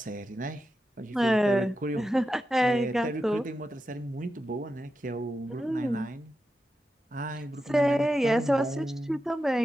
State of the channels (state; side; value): normal; both; correlation 0.89